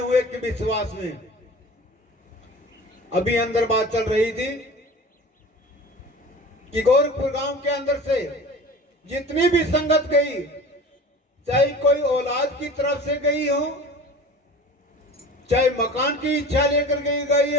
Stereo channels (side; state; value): both; normal; correlation 0.38